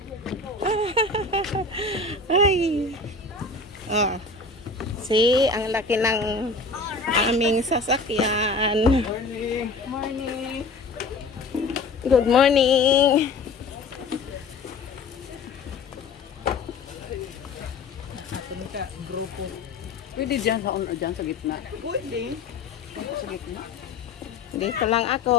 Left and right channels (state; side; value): quieter; right; 3.6 dB